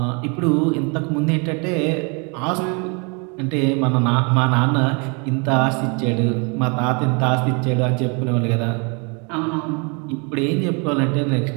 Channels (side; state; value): left; quieter; 33.2 dB